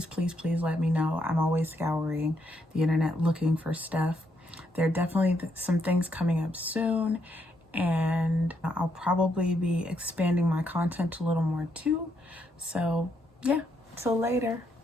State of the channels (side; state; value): both; normal; correlation 0.76